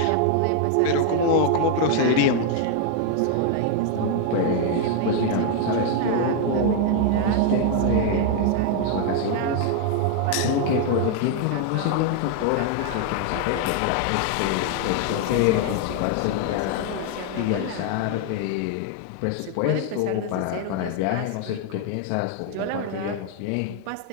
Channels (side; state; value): both; different; correlation 0.00